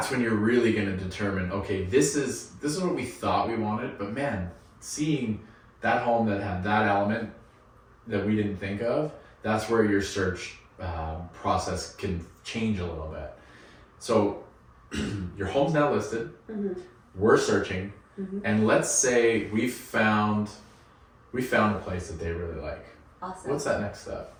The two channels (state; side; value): identical; both; correlation 1.00